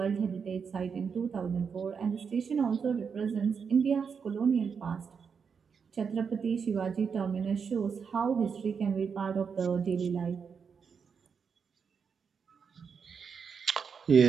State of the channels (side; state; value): left; quieter; 6.2 dB